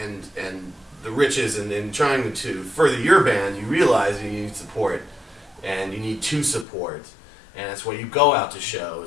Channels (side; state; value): right; drops out; at 6.7 s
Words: the riches, and in trying to further your band, you realize you need support, and you need to support, and that's why you go out to